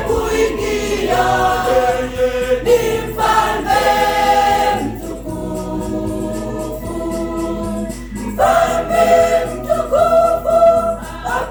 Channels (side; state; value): both; identical; correlation 1.00